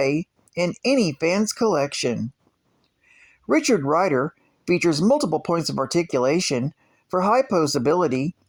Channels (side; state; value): both; identical; correlation 1.00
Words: in any fan's collection. Richard Rider features multiple points of articulation for high posability